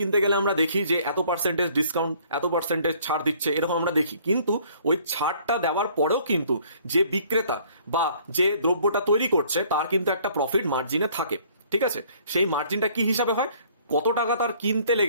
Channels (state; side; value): inverted; both; correlation -0.58